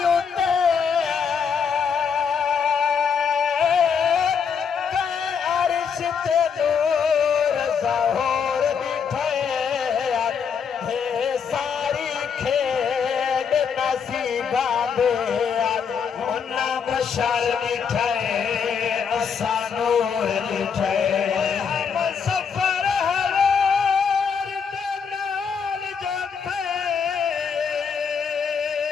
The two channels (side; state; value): right; quieter; 6.6 dB